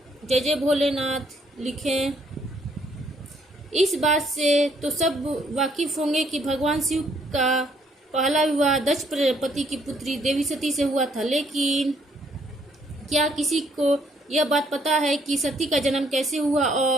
जय जय भोलेनाथ लिखें। इस बात से तो सब वाकिफ होंगे कि भगवान शिव का पहला विवाह दक्ष प्रजापति की पुत्री देवी सती से हुआ था। लेकिन क्या किसी को यह बात पता है कि सती का जन्म कैसे हुआ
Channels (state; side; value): normal; both; correlation 0.67